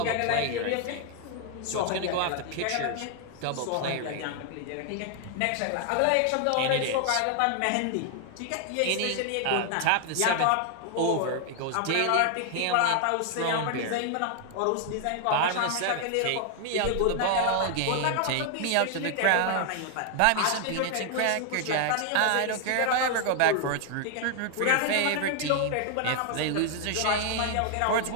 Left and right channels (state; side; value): different; both; correlation 0.00